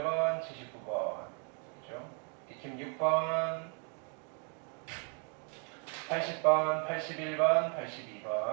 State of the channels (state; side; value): quieter; left; 38.9 dB